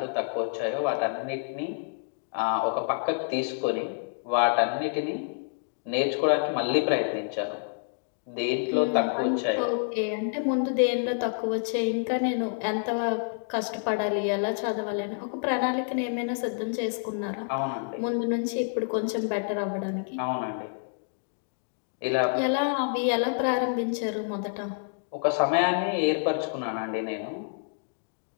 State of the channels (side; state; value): right; silent; digital silence